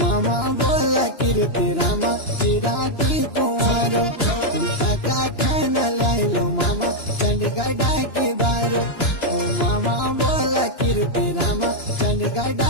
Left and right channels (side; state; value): right; late; 2.9 ms